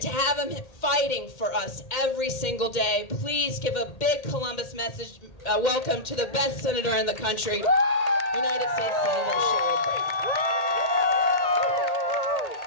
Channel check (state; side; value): late; right; 1.8 ms